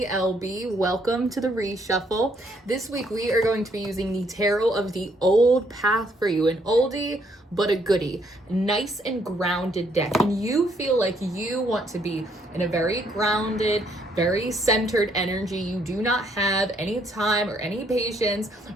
LB. Welcome to the Reshuffle. This week we are going to be using the Tarot of the Old Path for you, an oldie but a goodie. Nice and grounded deck. And you feel like you want to be in a very grounded, very centered energy. You do not have any time or any patience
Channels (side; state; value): both; normal; correlation 0.70